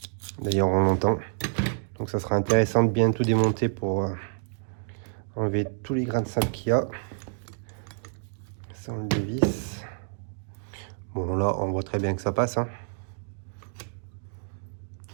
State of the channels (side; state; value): left; silent; digital silence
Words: D'ailleurs on l'entend. Donc ça sera intéressant de bien tout démonter pour enlever tous les grains de sable qu'il y a. Ça on le dévisse. Bon là on voit très bien que ça passe, hein.